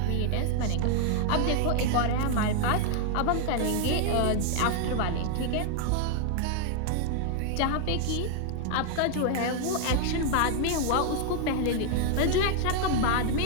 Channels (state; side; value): different; both; correlation 0.00